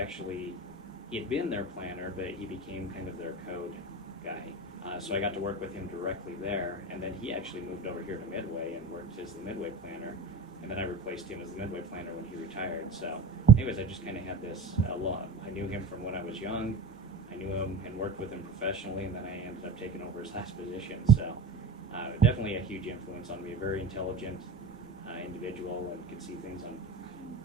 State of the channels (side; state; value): left; quieter; 3.3 dB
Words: had been their planner, but he became kind of their code guy. So I got to work with him directly there, and then he actually moved over here to Midway and worked as the Midway planner, and then I replaced him as the Midway planner when he retired. So anyways, I just kind of had this I knew him from when I was young. I knew him and worked with him professionally, and then I ended up taking over his last position. So definitely a huge influence on me, a very intelligent individual, and could see things